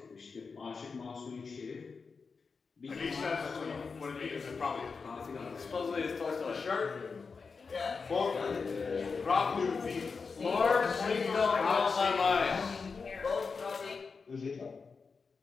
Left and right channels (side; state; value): right; quieter; 4.9 dB